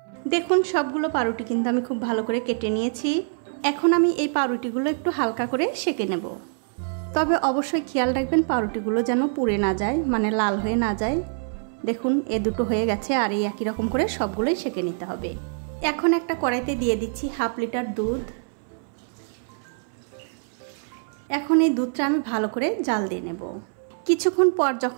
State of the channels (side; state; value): left; silent; 60 dB below the other